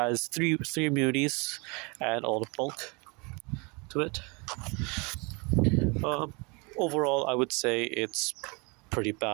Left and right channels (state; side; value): quieter; left; 29.6 dB